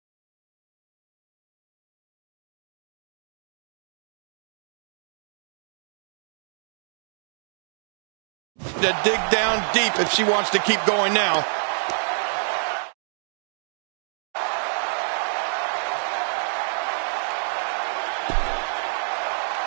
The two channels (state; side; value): silent; left; digital silence